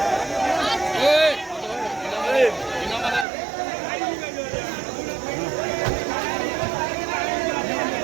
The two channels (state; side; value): drops out; left; at 3.2 s